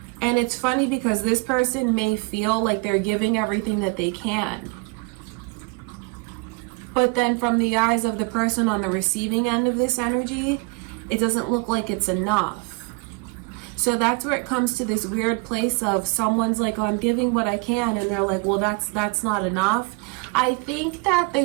And it's funny because this person may feel like they're giving everything that they can. But then from the eyes of the person on the receiving end of this energy, it doesn't look like it's enough. So that's where it comes to this weird place of someone's like, oh, I'm giving what I can. And they're like, well, that's not enough. I think that the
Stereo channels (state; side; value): quieter; left; 30.3 dB